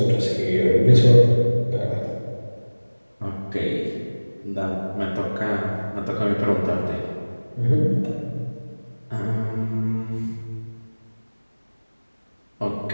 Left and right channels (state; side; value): inverted; both; correlation -1.00